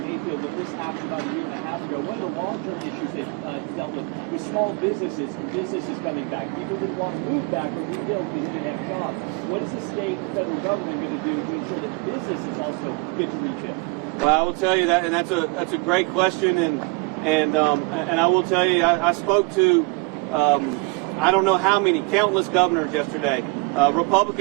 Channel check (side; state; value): left; quieter; 29.0 dB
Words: Mayfield, when this happened about a year and a half ago, one of the long-term issues they've dealt with was small businesses and businesses coming back. People didn't want to move back or rebuild because they didn't have jobs. What is the state and federal government going to do to ensure that businesses also get to rebuild? Well, I will tell you that, and that's a great question, and I will tell you, I spoke to I don't know how many, countless governors yesterday,